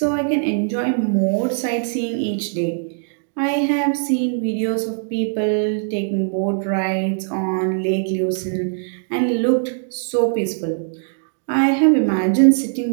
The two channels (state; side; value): silent; left; digital silence